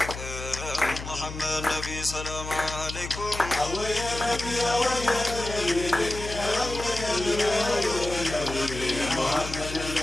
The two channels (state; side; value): noise; left; hum, 9 dB below the sound